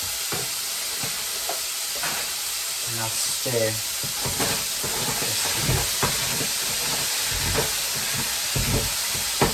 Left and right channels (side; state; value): both; identical; correlation 1.00